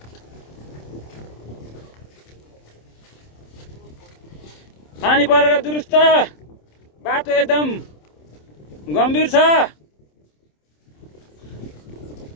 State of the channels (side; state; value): right; late; 27 ms